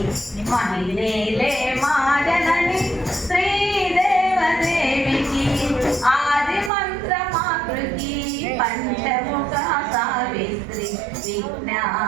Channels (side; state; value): left; drops out; at 6.7 s